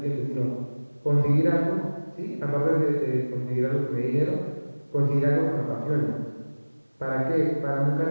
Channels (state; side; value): inverted; both; correlation -1.00